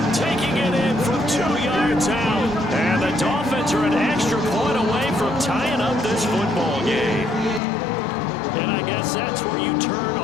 taking it in from 2 yards out. And the Dolphins are an extra point away from tying up this football game. And I guess that's where you turn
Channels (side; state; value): right; drops out; at 7.6 s